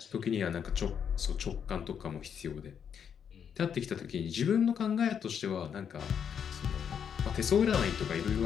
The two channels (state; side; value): quieter; right; 7.8 dB